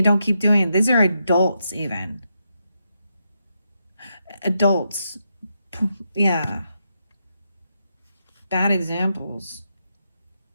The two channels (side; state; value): both; inverted; correlation -0.82